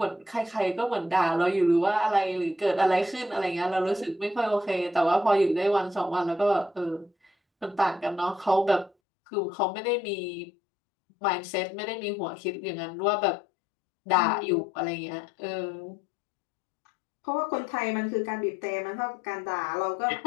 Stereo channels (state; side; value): drops out; right; at 8.9 s